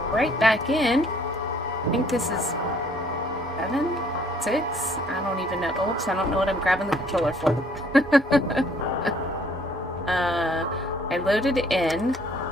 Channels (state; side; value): normal; both; correlation 0.61